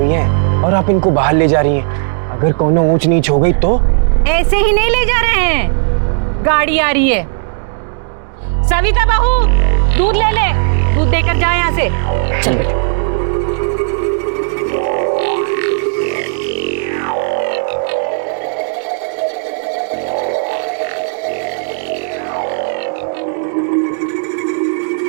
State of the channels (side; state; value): left; silent; digital silence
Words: हैं, और आप इनको बाहर ले जा रही हैं। अगर कोनो ऊंच नीच हो गई तो? ऐसे ही नहीं ले जा रहे हैं, गाड़ी आ रही है। सविता बहू, दूध ले ले, दूध देकर जा यहाँ से। चल बेटा।